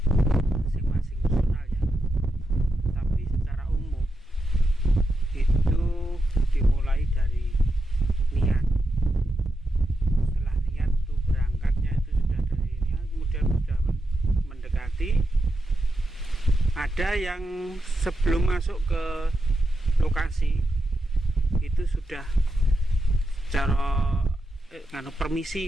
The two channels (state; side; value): normal; both; correlation 0.87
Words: masing-masing personal ya. Tapi secara umum itu dimulai dari niat. Setelah niat itu berangkatnya itu sudah dari niat, kemudian sudah mendekati. Ada yang sebelum masuk ke lokasi itu sudah secara